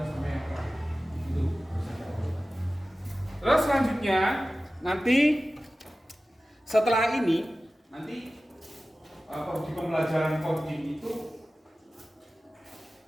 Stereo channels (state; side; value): normal; both; correlation 0.96